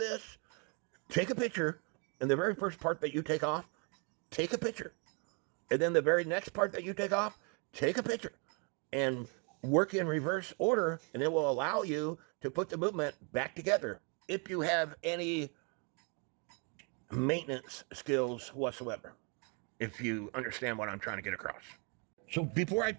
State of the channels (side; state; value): left; quieter; 36.0 dB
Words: take a picture, and the very first part that you take off, take a picture. And then the very next part that you take off, take a picture. And work in reverse order, and it will allow you to put the movement back together if you have any maintenance skills whatsoever, if you understand what I'm trying to get across. So before I